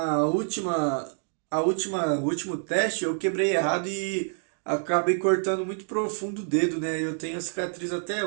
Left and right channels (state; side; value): silent; left; digital silence